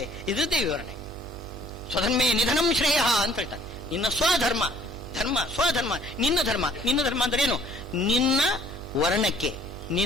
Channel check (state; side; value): noise; right; hum, 18 dB below the sound